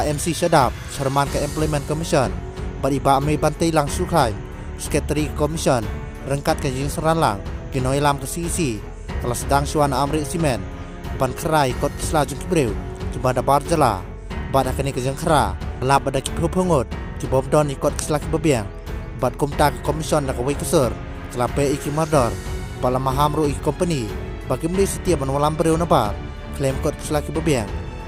MC Syadap, Chairman ke Employment Commission, bat iba Amei Bantai Lang Sukai, Secretary Commission, rengkat ke Jing Seranlang, Ginoi Lam ke CEC, kelas sedang Syuana Amrit Simen, ban kerai kot kisla jeng kibreu, jembada barjala, bat akani ke Jeng Kera, lab ada kipho pengut, kibom don ikot kisla kibabiang, bat kumta ke Commission da kawai kesur, kelape iki mardor, bala mahamru iki company, bagi meni setiap menwalam bereu nabar, klaim kot kisla kibabiang,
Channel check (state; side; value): identical; both; correlation 1.00